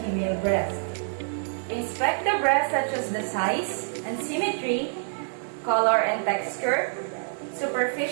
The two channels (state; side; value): silent; left; digital silence